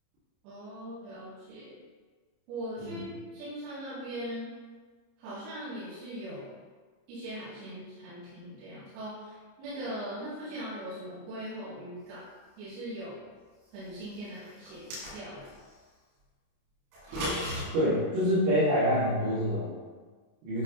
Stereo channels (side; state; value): left; late; 29 ms